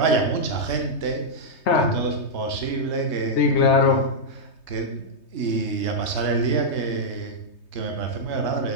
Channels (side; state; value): right; late; 3.2 ms